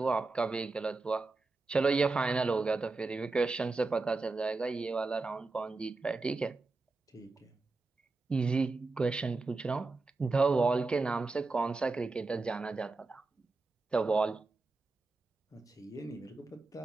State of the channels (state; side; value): quieter; left; 3.6 dB